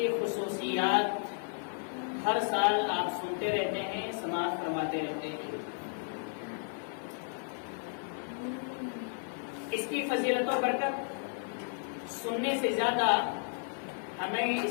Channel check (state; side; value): silent; right; 56 dB below the other